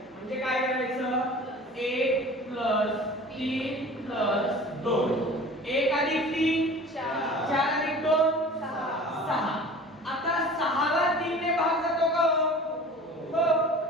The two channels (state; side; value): normal; both; correlation 0.42